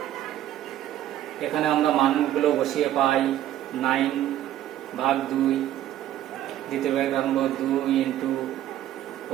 এখানে আমরা মানগুলো বসিয়ে পাই 9 ভাগ 2, দ্বিতীয় ভাগ রাখবো 2 ইন্টু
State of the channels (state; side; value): quieter; left; 12.6 dB